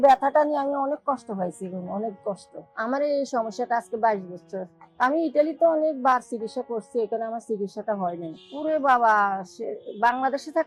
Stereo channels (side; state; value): both; identical; correlation 1.00